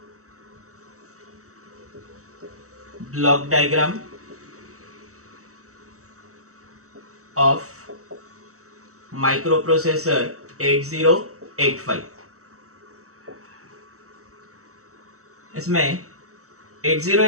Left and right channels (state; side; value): late; left; 0.65 ms